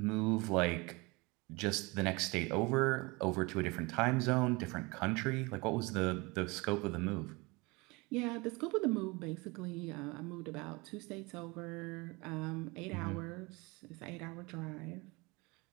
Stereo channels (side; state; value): left; quieter; 25.6 dB